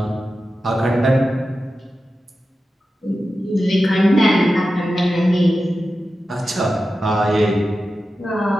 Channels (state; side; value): normal; both; correlation 0.92